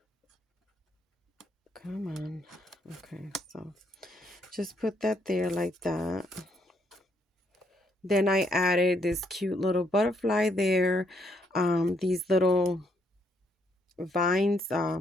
Come on. Okay, so just put that there like that. Then I added this cute little butterfly there. These little vines,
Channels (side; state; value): both; normal; correlation 0.72